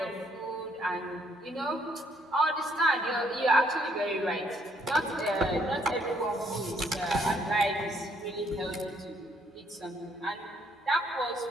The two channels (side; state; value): both; normal; correlation 0.69